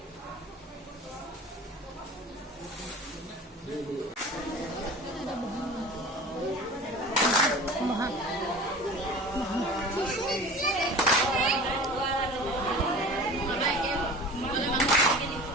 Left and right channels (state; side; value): normal; both; correlation 0.39